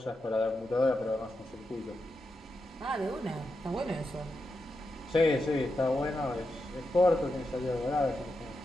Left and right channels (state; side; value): normal; both; correlation 0.87